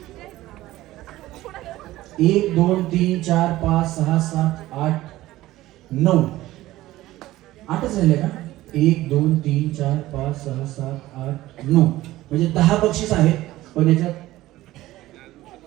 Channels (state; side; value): quieter; left; 16.3 dB